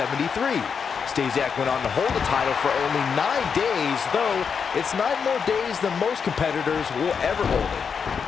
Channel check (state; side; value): quieter; right; 6.3 dB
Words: Stasiak went on to hold the title for only 9 days, though it's 9 more days than most competitors will ever hold it.